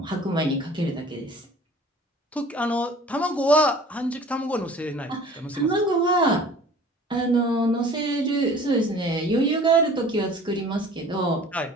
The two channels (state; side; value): normal; both; correlation 0.47